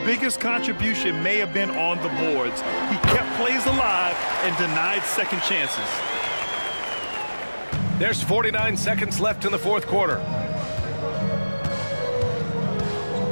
contribution may have been on the boards. He kept plays alive and denied second chances. There's 49 seconds left in the fourth quarter.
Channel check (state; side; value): inverted; both; correlation -1.00